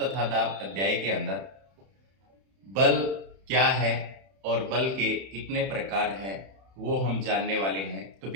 दाब अध्याय के अंदर बल क्या है और बल के कितने प्रकार हैं वो हम जानने वाले हैं। तो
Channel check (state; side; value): late; left; 31 ms